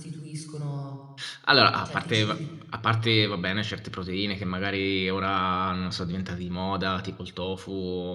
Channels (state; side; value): identical; both; correlation 1.00